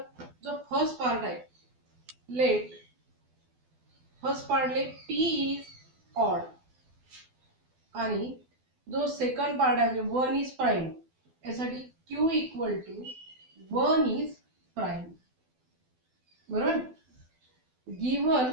जो फर्स्ट पार्ट आहे let first part let p is odd आणि जो सेकंड पार्ट आहे म्हणजे 1 इज प्राइम यासाठी q equal to 1 is prime. बरोबर.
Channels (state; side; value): late; left; 12 ms